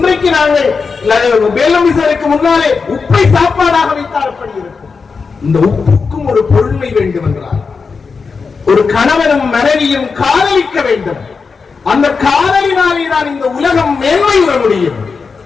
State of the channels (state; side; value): quieter; right; 5.0 dB